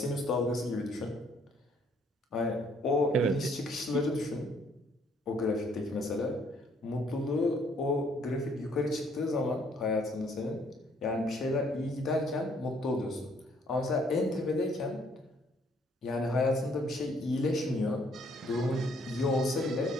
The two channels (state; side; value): normal; both; correlation 0.65